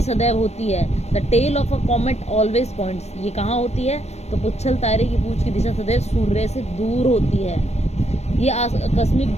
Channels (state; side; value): late; right; 0.31 ms